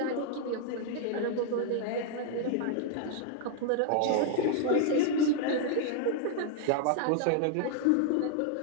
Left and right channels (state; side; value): different; both; correlation 0.00